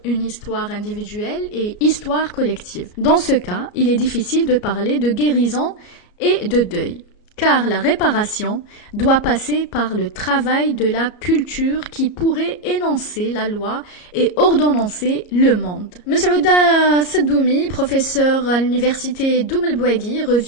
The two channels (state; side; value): late; right; 34 ms